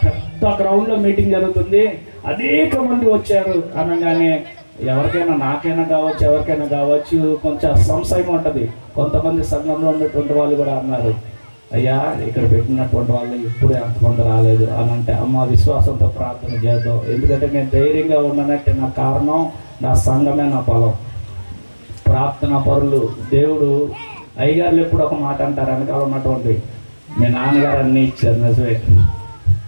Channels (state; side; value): inverted; both; correlation -1.00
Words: పెద్ద గ్రౌండ్లో మీటింగ్ జరుగుతుంది, అనేక మంది వచ్చారు అనగానే ఎవరికైనా, నాకైనా కావచ్చు, ఎవరికైనా కావచ్చు, కొంచెం సంశయం ఉంటుంది. కొంతమంది సంఘంలో ఉన్నటువంటి వాళ్ళు కూడా అన్నారు, అయ్యా ఇక్కడ పెట్టినటువంటి వాళ్ళు ఇప్పుడు ఎంతమంది రాలేదు అని అంటే, అమ్మ విశ్వాసంతో ప్రార్థన చేద్దాం, ఎందుకంటే నేను ధైర్యంగా ఉన్నానంటే నా కారణం నా సంఘమే, నా బలం, ప్రార్థన పరులు. దేవుడు అయ్యగారులు ఎప్పుడు ఒక మాట అంటారు, వెనకాల ఉన్నటువంటి మీ నాన్నగారు అన్నీ ఇచ్చారు, నిజమే,